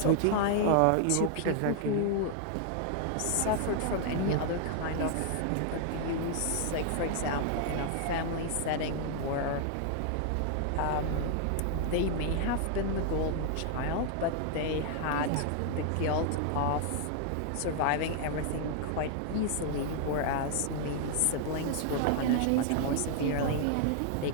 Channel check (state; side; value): different; both; correlation 0.00